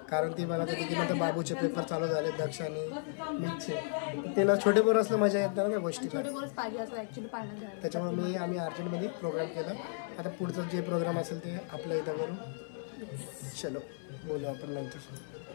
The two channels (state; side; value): silent; right; 55 dB below the other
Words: कारण ती मला होती की नंतर बाबूचे पेपर चालू झाले दक्ष आणि मीचे त्याला छोटे पोरं असलं मजा येत नाही ना त्या गोष्टी छोटे बोलच पाहिजे असं ॲक्च्युली पाण्यात घ्यायला त्याच्यामुळे आम्ही अर्जंटमध्ये प्रोग्राम केला आता पुढचं जे प्रोग्राम असेल ते आपल्या इथं करू चलो बोलू आपण नंतर